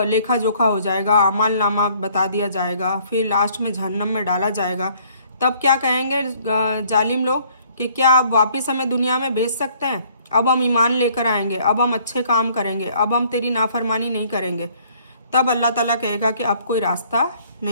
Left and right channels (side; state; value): both; inverted; correlation -0.61